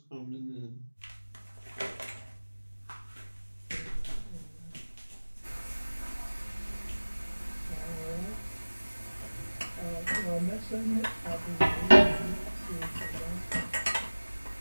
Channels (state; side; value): inverted; both; correlation -1.00